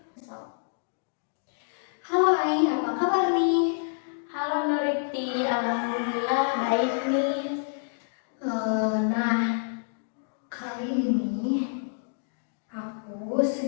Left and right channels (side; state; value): right; silent; digital silence